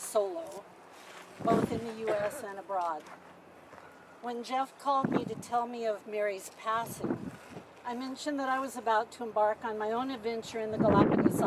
both in the U.S. and abroad. When Jeff called me to tell me of Mary's passing, I mentioned that I was about to embark on my own adventure in the Galapagos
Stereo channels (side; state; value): both; identical; correlation 1.00